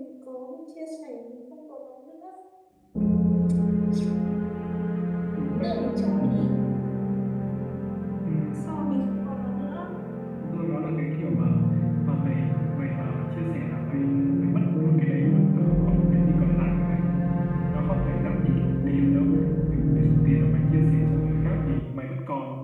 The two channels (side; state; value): both; identical; correlation 1.00